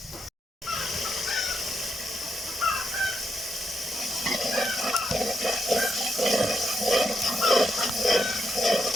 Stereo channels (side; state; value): both; normal; correlation 0.80